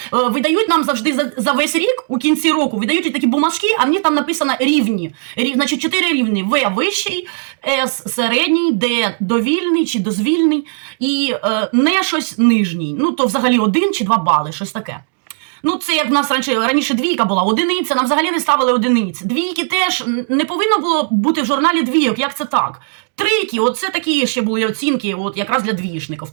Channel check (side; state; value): left; silent; digital silence